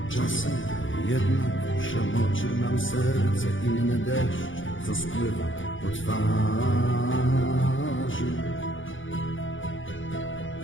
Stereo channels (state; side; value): late; right; 0.56 ms